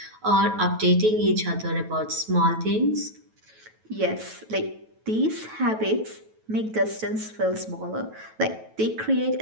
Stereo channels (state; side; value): late; left; 9.2 ms